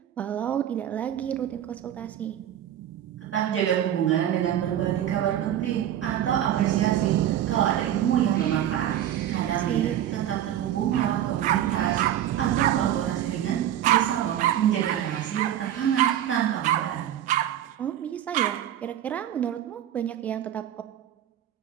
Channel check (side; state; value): left; quieter; 11.3 dB